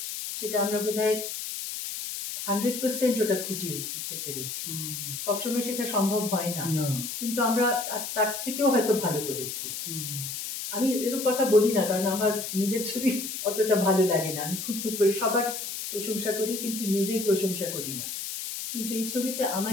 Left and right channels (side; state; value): left; noise; hiss, 6 dB below the sound